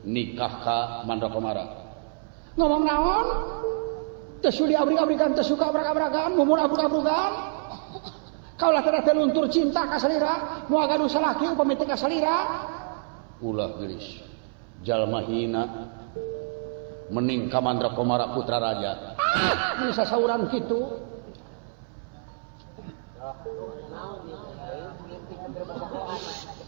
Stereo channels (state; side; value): silent; left; 60 dB below the other